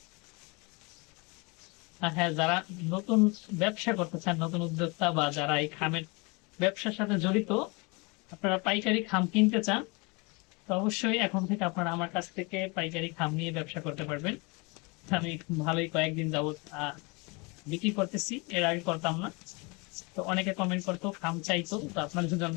আর হ্যাঁ, যারা নতুন ব্যবসা করতে চান, নতুন উদ্যোক্তা বা যারা এই খামের ব্যবসার সাথে জড়িত, আপনারা পাইকারি খাম কিনতে চান, তো অবশ্যই এখন থেকে আপনারা আমার কাছ থেকে পাইকারি খাম নিয়ে ব্যবসা করতে পারবেন। আমি ভালোই কয়েকদিন যাবত বিক্রি করতেছি, এর আগে করতাম না। তো অনেকে কমেন্ট করতো, খাম চাইতো, তো আপনার জন্য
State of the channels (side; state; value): right; quieter; 28.5 dB